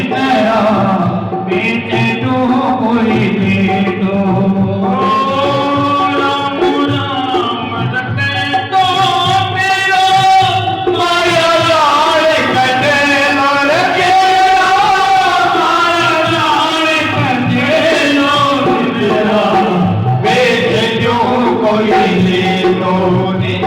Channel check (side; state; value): both; identical; correlation 1.00